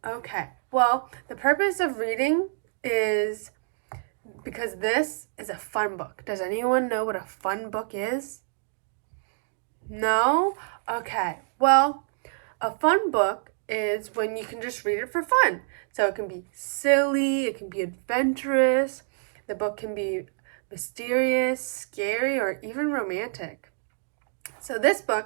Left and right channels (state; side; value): silent; left; digital silence